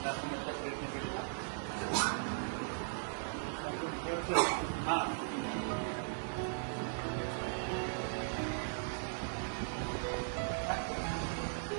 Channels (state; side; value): silent; left; digital silence